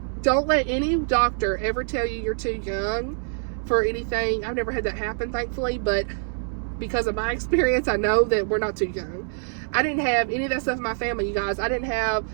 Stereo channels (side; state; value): left; silent; 62 dB below the other